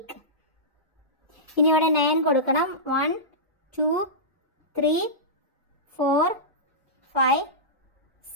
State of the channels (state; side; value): normal; both; correlation -0.16